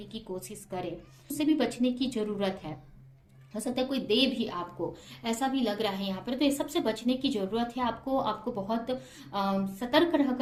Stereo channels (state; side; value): identical; both; correlation 1.00